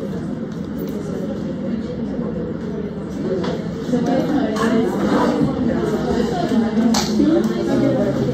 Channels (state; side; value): identical; both; correlation 1.00